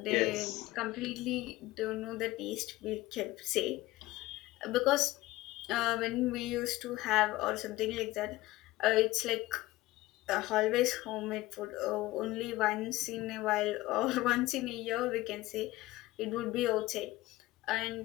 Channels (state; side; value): quieter; right; 18.3 dB